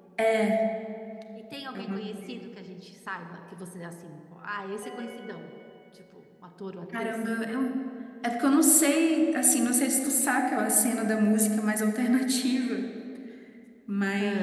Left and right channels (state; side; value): identical; both; correlation 1.00